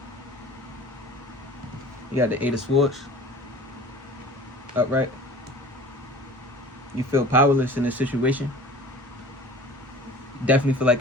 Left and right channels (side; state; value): both; normal; correlation 0.43